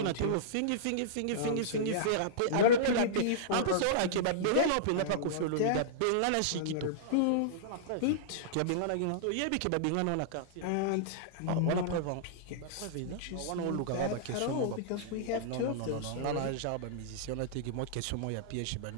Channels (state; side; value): different; both; correlation -0.03